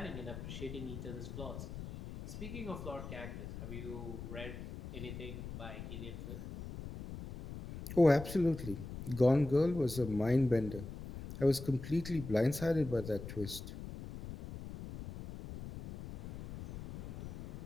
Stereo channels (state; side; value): noise; left; rumble, 9 dB below the sound